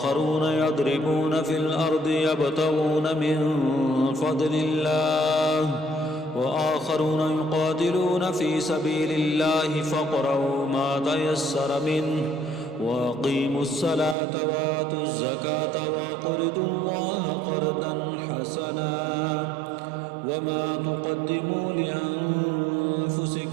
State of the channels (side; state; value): left; drops out; at 14.2 s